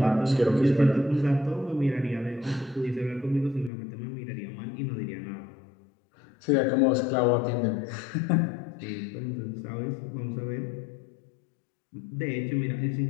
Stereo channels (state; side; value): drops out; right; at 3.7 s